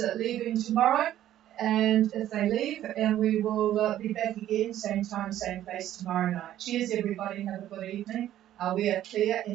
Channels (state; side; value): quieter; left; 12.4 dB